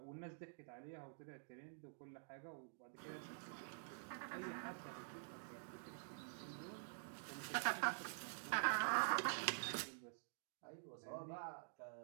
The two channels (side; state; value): left; silent; digital silence